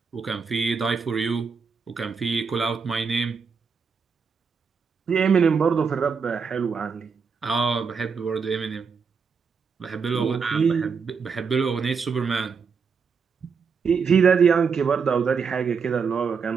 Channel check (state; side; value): quieter; left; 5.7 dB